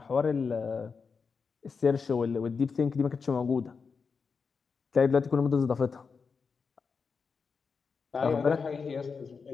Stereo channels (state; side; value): quieter; right; 5.3 dB